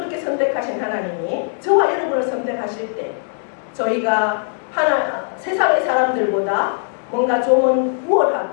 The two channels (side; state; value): right; silent; 66 dB below the other